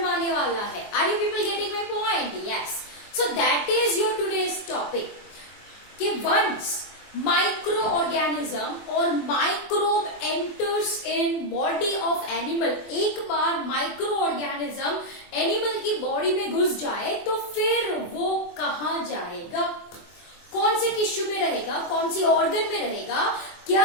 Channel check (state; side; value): late; right; 24 ms